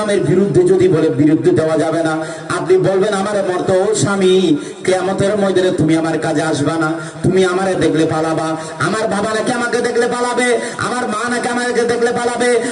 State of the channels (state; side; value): identical; both; correlation 1.00